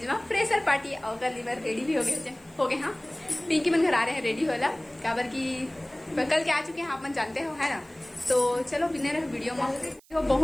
में फ्रेशर पार्टी और लीवर रेडी भी हो गए। हाँ, पिंकी मन घर आ रहे हैं रेडी होला, काबर की कल के आ चुके हैं, आप मन जानते हो है ना। तो चलो बिने रहे वीडियो में।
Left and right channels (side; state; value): right; noise; hiss, 28 dB below the sound